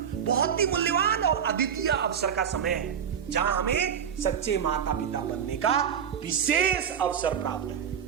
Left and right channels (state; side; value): quieter; left; 8.0 dB